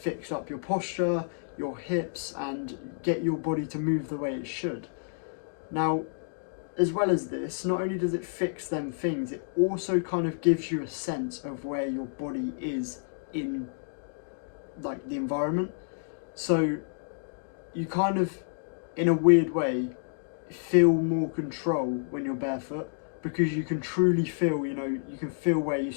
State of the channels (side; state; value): right; silent; digital silence